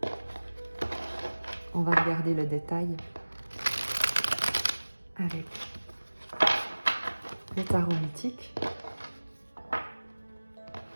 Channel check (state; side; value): inverted; both; correlation -1.00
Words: On va regarder le détail avec le tarot mythique.